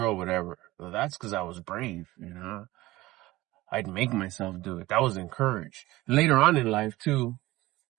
whatever. Well, that's because I was brave, I'd make myself do it. That was encouraged. Later on in life too.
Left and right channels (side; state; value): left; quieter; 18.4 dB